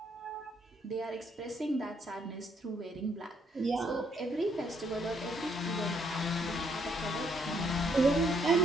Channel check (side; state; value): both; normal; correlation 0.71